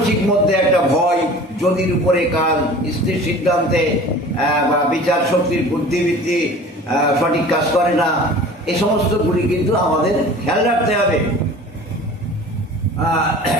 মধ্যে একটা ভয়, যদির উপরে কাল, স্থির সিদ্ধান্তে বা বিচার শক্তির বুদ্ধিবৃত্তি সঠিক কাজ করে না, এই সমস্তগুলি কিন্তু আমাদের খেয়াল রাখতে হবে।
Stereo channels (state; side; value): normal; both; correlation 0.42